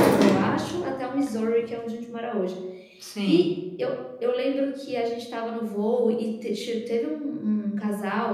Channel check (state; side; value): identical; both; correlation 1.00